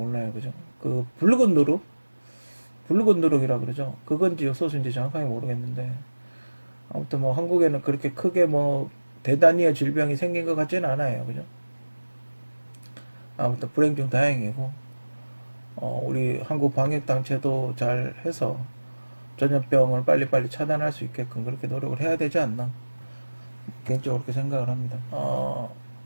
그죠? 그 붉은 누룩이라 그러죠. 그건지 요소수인지 정확하게 모르겠는데 아무튼 뭐 한국에는 그렇게 크게 뭐 대단위의 질병이 생긴 것 같지는 않아요. 그죠? 아무튼 불행 중 다행이고 우리 한국 방역 단체도 잘 해서 전염병을 빨리빨리 차단할 수 있게끔 그렇게 노력을 해야 되지 않나 개인적으로 그렇게 생각을 합니다.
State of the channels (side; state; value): both; inverted; correlation -1.00